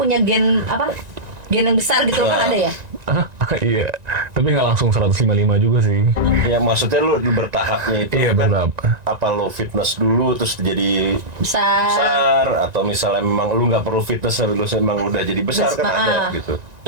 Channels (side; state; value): left; late; 1.9 ms